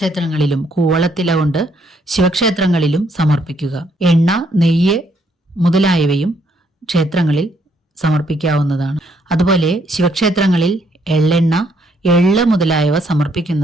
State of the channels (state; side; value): normal; both; correlation 0.71